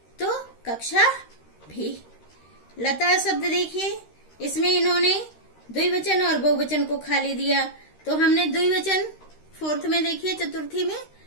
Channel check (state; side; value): late; right; 13 ms